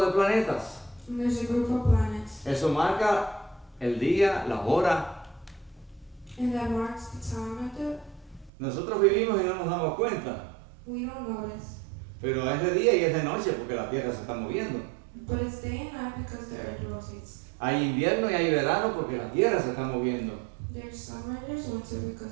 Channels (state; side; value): drops out; left; at 8.5 s